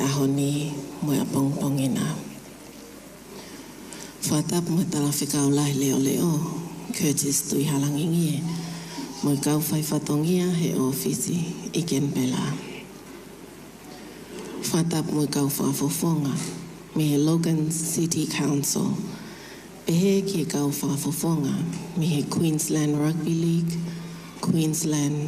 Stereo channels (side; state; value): both; identical; correlation 1.00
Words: mo a pongpongina. Whatap mo tala whikau lai leo leo, Curtis tui halangingie, mo kau whai whatongia he ofisi I Kenpela. Whatap mo kau whafofonga, me he Logan City Council, pehe ki kau whafofonga, me he Queensland Rugby League,